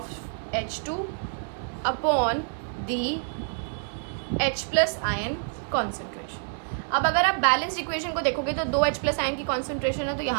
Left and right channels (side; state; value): left; silent; digital silence